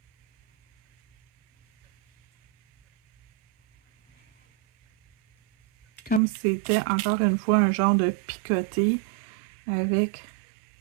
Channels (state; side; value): drops out; left; at 6.2 s